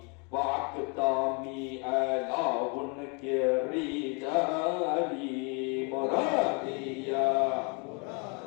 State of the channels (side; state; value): right; quieter; 33.3 dB